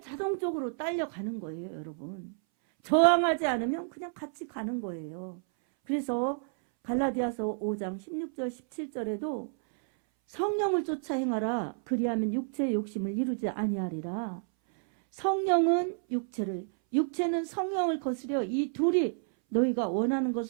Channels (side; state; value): left; silent; 58 dB below the other